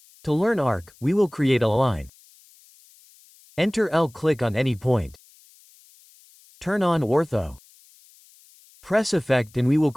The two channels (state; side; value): noise; left; hiss, 28 dB below the sound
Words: To learn arc, we will create a line. Enter L, click on any point. Turn on Ortho. Press Effect and we will